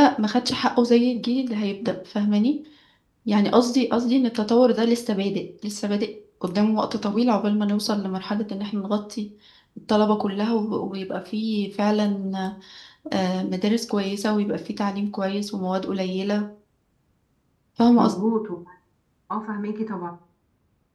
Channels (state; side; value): identical; both; correlation 1.00